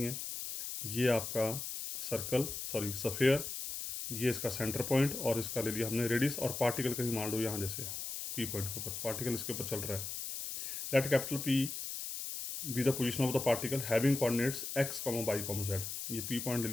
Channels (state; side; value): noise; left; hiss, 5 dB below the sound